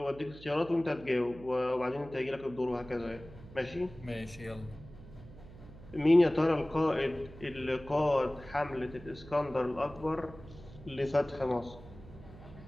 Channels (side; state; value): right; noise; hum, 18 dB below the sound